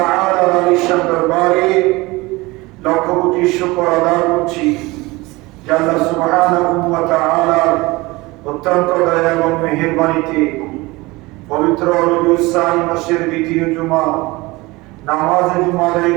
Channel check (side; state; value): left; quieter; 22.1 dB